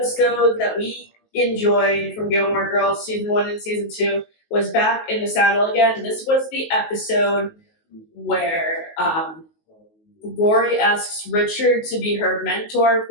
that we enjoyed from Gilmore Girls season 1 and season 2 was Back in the Saddle Again. This was the episode where Rory asks Richard to be her mentor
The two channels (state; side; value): late; right; 19 ms